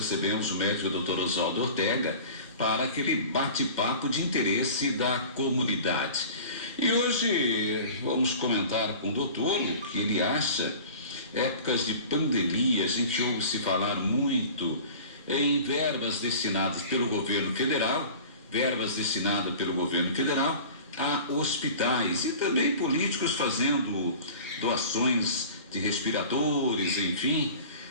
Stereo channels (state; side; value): inverted; both; correlation -0.40